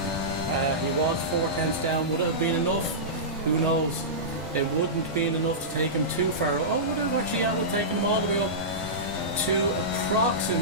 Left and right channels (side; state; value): both; normal; correlation -0.17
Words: He was 4/10 down. Would it have been enough? Who knows? It wouldn't have been enough to take him too far. Oh, would it have actually taken him all the way up to